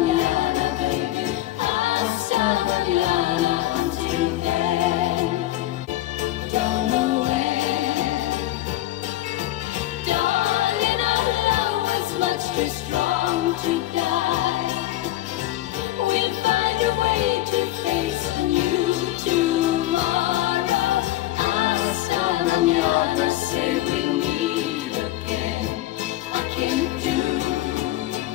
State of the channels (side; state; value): right; quieter; 15.4 dB